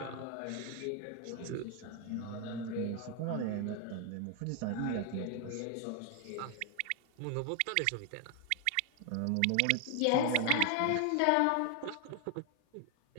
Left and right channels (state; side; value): different; both; correlation 0.00